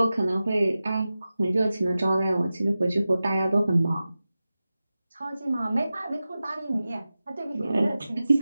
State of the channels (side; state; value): both; inverted; correlation -0.95